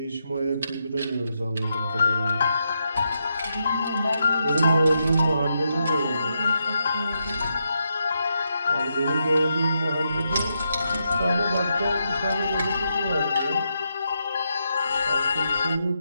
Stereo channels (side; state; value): both; inverted; correlation -0.82